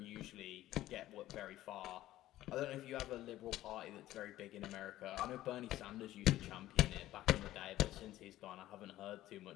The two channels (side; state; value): right; quieter; 14.7 dB